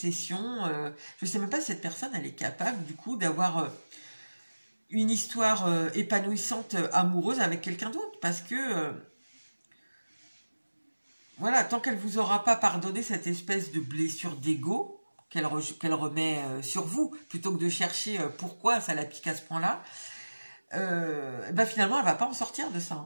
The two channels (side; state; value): both; inverted; correlation -1.00